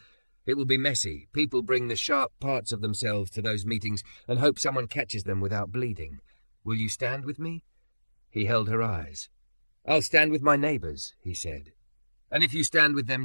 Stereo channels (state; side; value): inverted; both; correlation -1.00